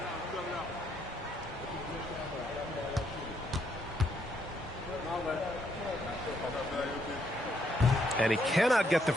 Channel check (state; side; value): normal; both; correlation 0.73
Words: And he cannot get the